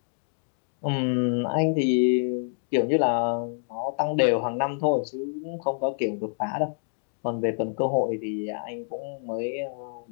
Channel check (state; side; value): silent; right; digital silence